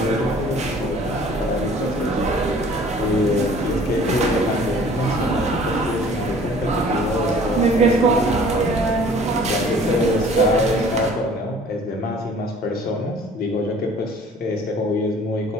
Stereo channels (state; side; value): normal; both; correlation 0.51